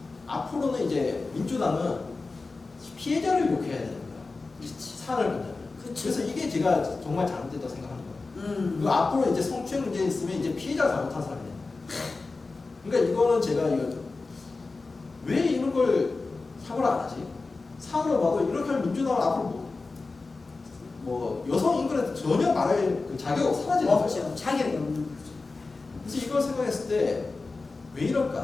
앞으로는 이제 민주당은 피해자를 욕해야 되는 거야. 그렇지. 사안을 본다면. 그치. 그래서 이게 제가 정말 잘못됐다고 생각하는 거예요. 그리고 앞으로 이제 성추행 문제 있으면 이제 피해자가 잘못한 사람이 돼요. 그러니까 이거는 제가 왜 이런 걸 사과를 안 하지? 사과를 봐도 이렇게 하면 민주당은 앞으로 뭐 여성 인권에 전혀 말할 그 자격 사라지는 거죠. 없죠. 자격이 없는 거죠. 그래서 이걸 생각했을 때 왜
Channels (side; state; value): right; quieter; 3.8 dB